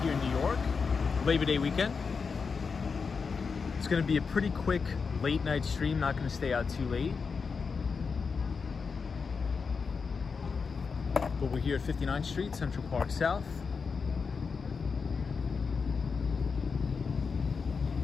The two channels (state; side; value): quieter; right; 5.3 dB